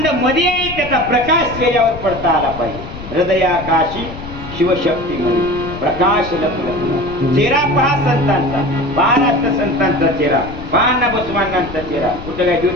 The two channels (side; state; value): left; noise; rumble, 12 dB below the sound